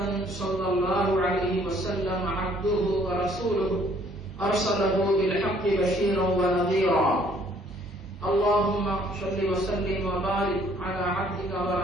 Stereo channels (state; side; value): normal; both; correlation 0.61